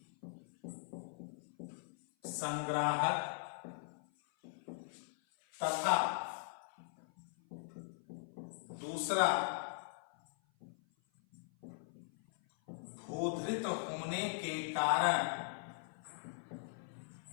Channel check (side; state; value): right; silent; 51 dB below the other